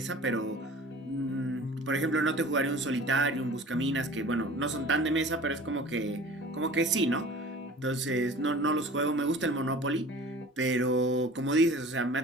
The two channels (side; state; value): both; normal; correlation 0.43